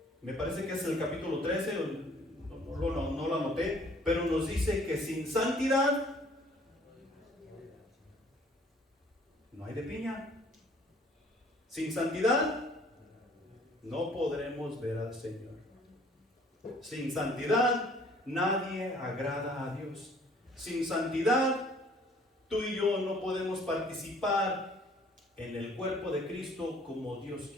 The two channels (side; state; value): both; normal; correlation 0.57